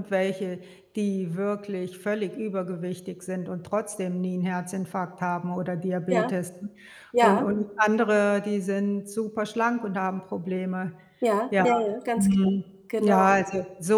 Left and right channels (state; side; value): identical; both; correlation 1.00